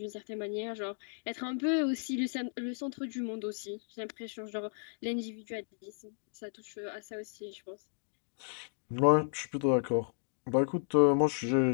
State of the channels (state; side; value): silent; right; digital silence